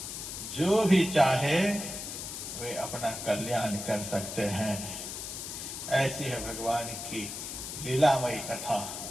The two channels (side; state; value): left; noise; hiss, 7 dB below the sound